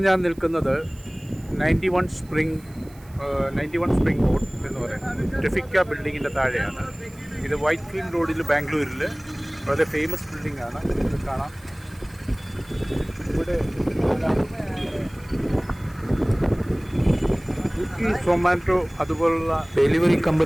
ഞാൻ നിൽക്കുന്നത് 91 സ്പ്രിംഗ് റോഡ് എന്ന് പറയുന്നത് ട്രിഫിക്ക ബിൽഡിങ്ങിൻ്റെ താഴെയാണ്. ഇത് വൈറ്റ് ഫീൽഡ് റോഡിൽ ബാംഗ്ലൂരിൽ വളരെ ഫേമസ് ബിൽഡിംഗ് ആണ്. ഇത് കാണാം. ഇവിടെ സൊമാറ്റോ അതുപോലുള്ള ഡെലിവറി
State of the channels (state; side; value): noise; right; hiss, 26 dB below the sound